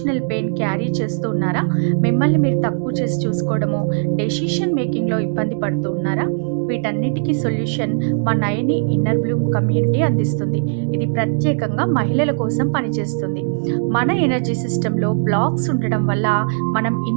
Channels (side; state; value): left; silent; digital silence